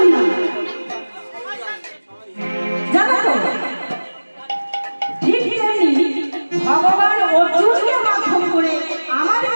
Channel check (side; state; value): both; inverted; correlation -1.00